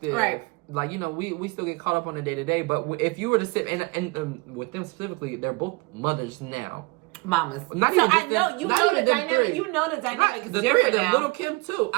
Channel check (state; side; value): quieter; left; 26.2 dB